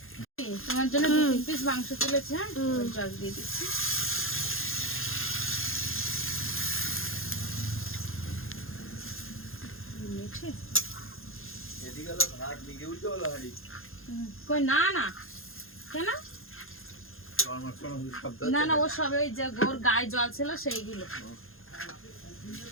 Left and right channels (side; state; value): right; late; 0.60 ms